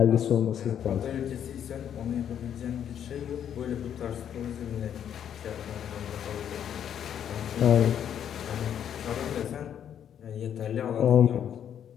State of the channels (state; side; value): quieter; right; 9.3 dB